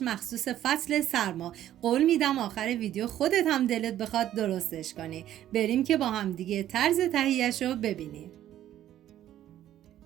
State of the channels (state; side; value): quieter; left; 12.2 dB